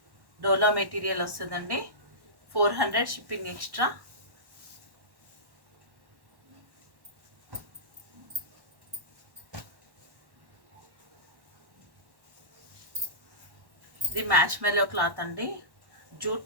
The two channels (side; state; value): left; late; 1.1 ms